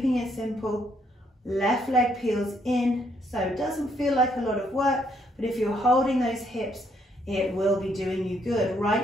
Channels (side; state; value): both; normal; correlation 0.71